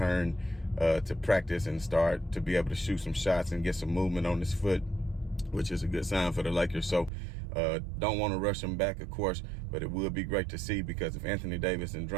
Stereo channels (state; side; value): drops out; left; at 7.1 s